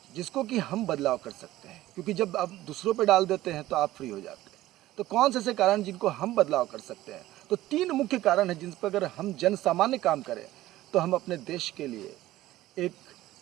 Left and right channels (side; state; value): left; quieter; 15.7 dB